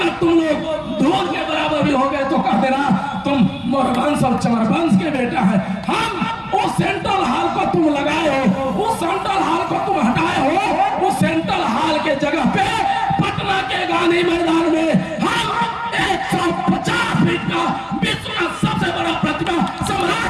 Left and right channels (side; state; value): both; identical; correlation 1.00